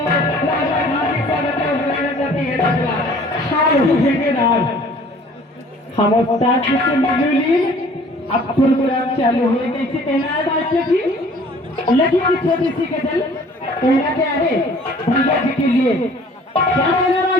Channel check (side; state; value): both; normal; correlation 0.52